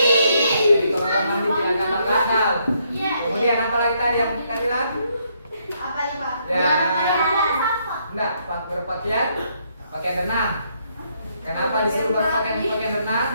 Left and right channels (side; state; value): both; inverted; correlation -0.73